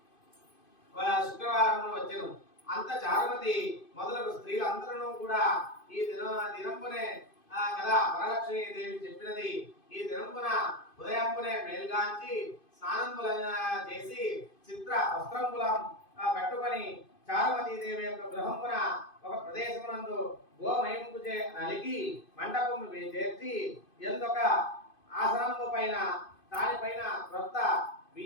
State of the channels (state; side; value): late; right; 2.5 ms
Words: శుక్రవారం వచ్చెను. అంత చారుమతి మొదలగు స్త్రీలందరూ కూడా ఈ దినంపునే కదా వరలక్ష్మీ దేవి చెప్పినది. ఈ దినంపున ఉదయంపునే మేల్గాంచి స్నానంపుల చేసి చిత్ర వస్త్రంపులం కట్టుకొని చారుమతీదేవి యొక్క గృహంపున ఒక ప్రదేశమునందు గోమయంపు నలిగి మండపము చేర్చి ఎందొక ఆసనము పైన దానిపైన క్రొత్త